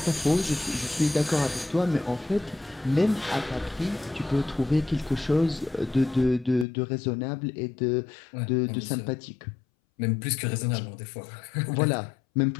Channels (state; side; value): drops out; right; at 6.7 s